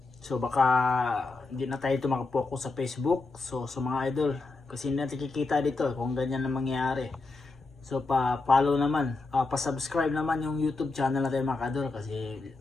so baka hindi na tayo makapokus sa Facebook. So sa mga idol, kasi hindi natin kikita dito kung ganyan na mangyayari. So pa-follow naman, pa-subscribe naman yung YouTube channel natin mga kadol, kasi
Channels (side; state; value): right; quieter; 3.6 dB